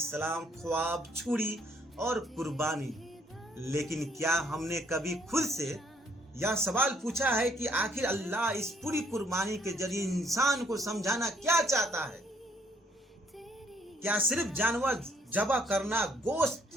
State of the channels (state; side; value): normal; both; correlation 0.67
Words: ख्वाब, छुरी और कुर्बानी। लेकिन क्या हमने कभी खुद से यह सवाल पूछा है कि आखिर अल्लाह इस पूरी कुर्बानी के जरिए इंसान को समझाना क्या चाहता है। क्या सिर्फ जानवर ज़बह करना,